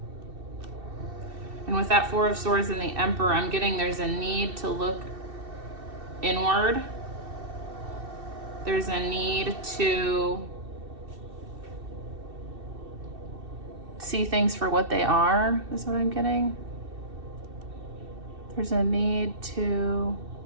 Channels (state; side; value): late; left; 2.7 ms